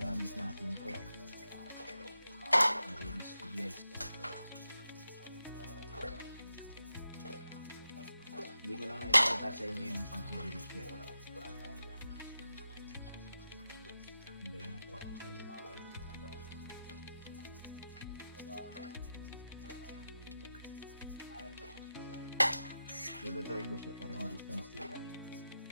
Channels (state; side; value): inverted; both; correlation -0.90